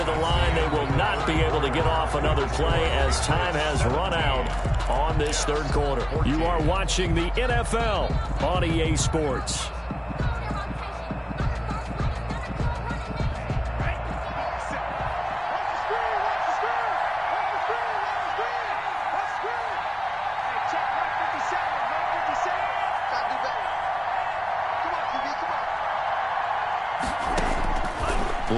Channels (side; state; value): both; identical; correlation 1.00